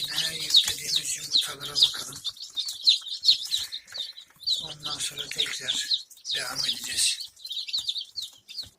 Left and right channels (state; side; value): identical; both; correlation 1.00